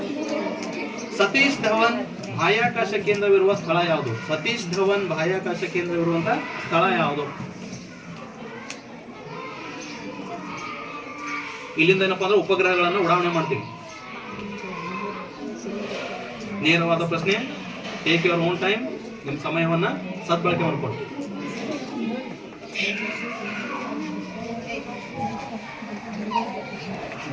ಸತೀಶ್ ಧವನ್ ಬಾಹ್ಯಾಕಾಶ ಕೇಂದ್ರವಿರುವ ಸ್ಥಳ ಯಾವುದು? ಸತೀಶ್ ಧವನ್ ಬಾಹ್ಯಾಕಾಶ ಕೇಂದ್ರವಿರುವಂತ ಸ್ಥಳ ಯಾವುದು? ಇಲ್ಲಿಂದ ಏನಪ್ಪಾ ಅಂದ್ರೆ ಉಪಗ್ರಹಗಳನ್ನು ಉಡಾವಣೆ ಮಾಡ್ತೀವಿ. ನೇರವಾದ ಪ್ರಶ್ನೆ. Take your own time. ನಿಮ್ಮ ಸಮಯವನ್ನ ಸದ್ಬಳಕೆ ಮಾಡಿಕೊಳ್ಳಿ.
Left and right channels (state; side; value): identical; both; correlation 1.00